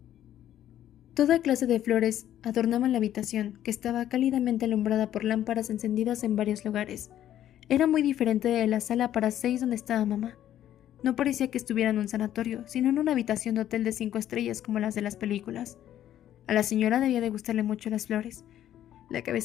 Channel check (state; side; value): quieter; right; 11.7 dB